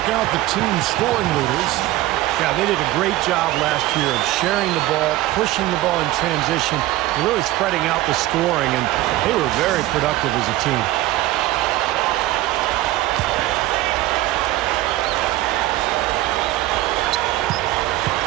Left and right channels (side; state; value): left; quieter; 16.4 dB